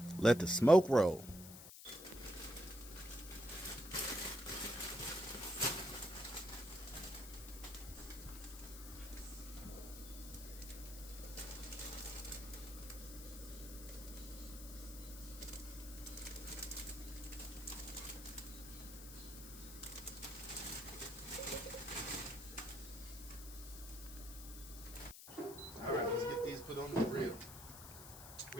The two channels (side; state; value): left; noise; hiss, 13 dB below the sound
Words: Let the smoke roll. All right, let's get these put on the grill.